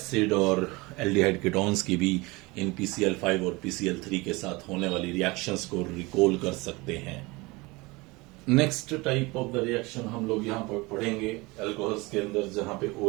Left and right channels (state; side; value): quieter; left; 23.9 dB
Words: और एल्डिहाइड कीटोन्स की भी इन PCl5 और PCl3 के साथ होने वाली रिएक्शंस को रिकॉल कर सकते हैं। Next type of the reaction हम लोग यहाँ पर पढ़ेंगे एल्कोहल्स के अंदर, जहां पे